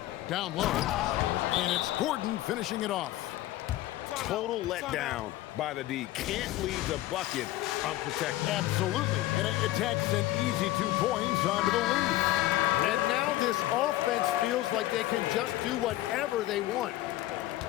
Down low, and it's Gordon finishing it off. Total letdown by the D. Can't leave the bucket unprotected. Absolutely, and it takes an easy 2 points onto the lead. And now this offense feels like they can just do whatever they want.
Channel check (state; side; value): quieter; right; 15.8 dB